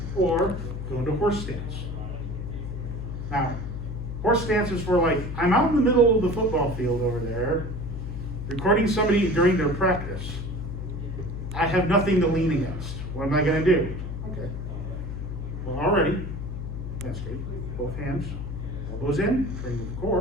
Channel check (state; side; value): noise; left; hum, 6 dB below the sound